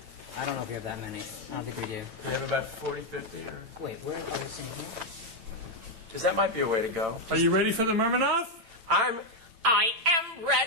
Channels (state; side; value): late; left; 8.9 ms